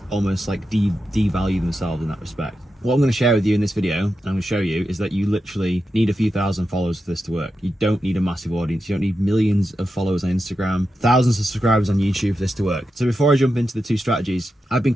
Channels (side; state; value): both; normal; correlation 0.89